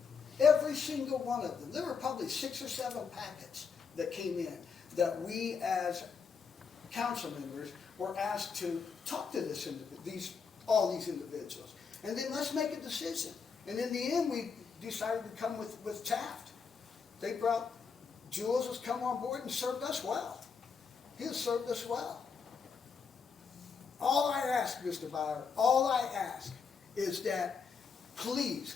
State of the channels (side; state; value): right; quieter; 5.7 dB